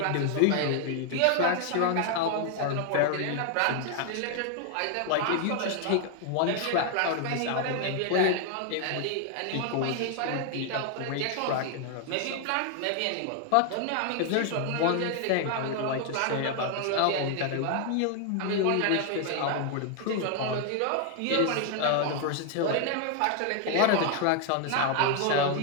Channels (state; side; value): different; both; correlation 0.00